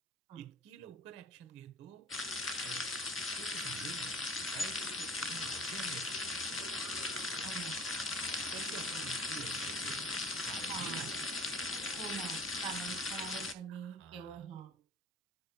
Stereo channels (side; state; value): both; normal; correlation 0.45